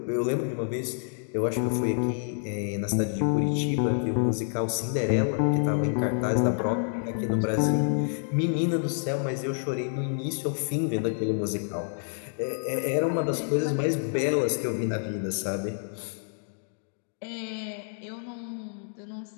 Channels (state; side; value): silent; right; digital silence